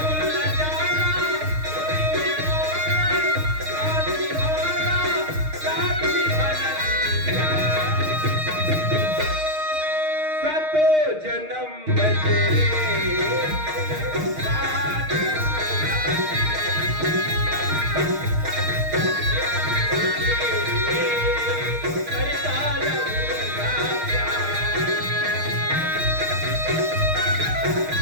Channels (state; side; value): late; left; 6.5 ms